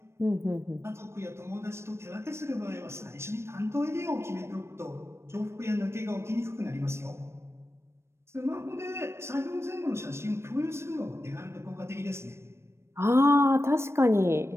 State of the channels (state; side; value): late; left; 0.13 ms